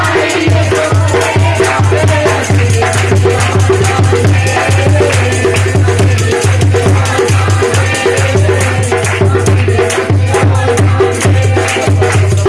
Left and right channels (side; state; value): both; identical; correlation 1.00